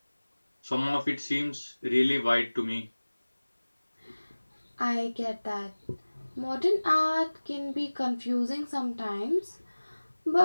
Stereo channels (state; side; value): inverted; both; correlation -1.00